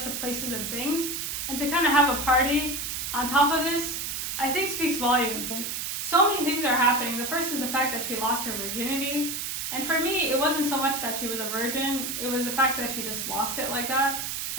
to places and things. And to kind of have a party on top of this, I think speaks volumes. And so many things are happening. The first is the fact that she lost her virginity. And for me, it wasn't so much that she was a virgin, it was the fact that she just lost it like that.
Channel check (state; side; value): noise; right; hiss, 3 dB below the sound